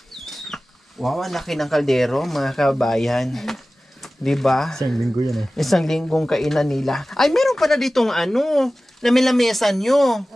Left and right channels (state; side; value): normal; both; correlation 0.96